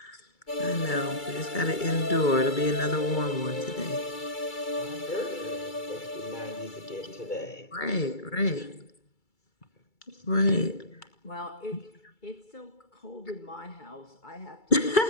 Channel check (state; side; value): late; right; 2.3 ms